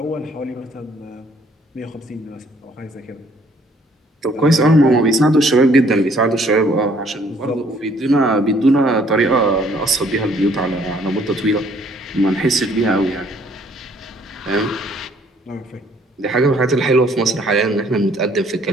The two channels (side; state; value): both; normal; correlation 0.62